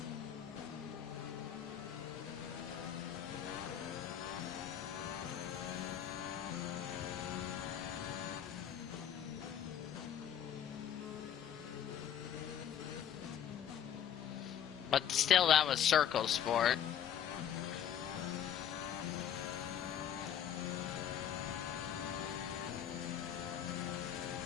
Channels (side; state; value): right; quieter; 9.6 dB